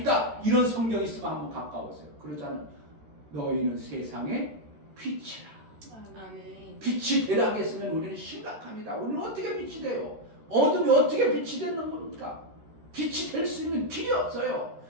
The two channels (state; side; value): late; left; 13 ms